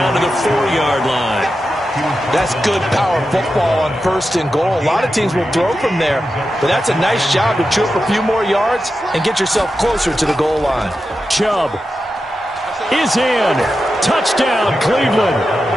to the 4-yard line. That's good power football on 1st and goal. A lot of teams will throw from there, but that's a nice job to chew up a few more yards and get yourself closer to the goal line. Chubb is in. Touchdown, Cleveland.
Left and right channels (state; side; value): normal; both; correlation 0.90